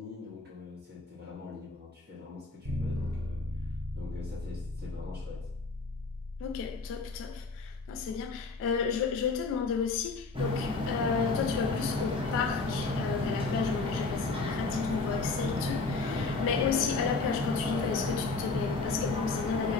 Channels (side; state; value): right; quieter; 4.0 dB